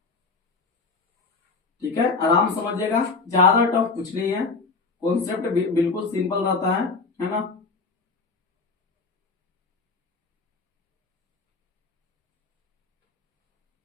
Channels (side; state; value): right; quieter; 4.2 dB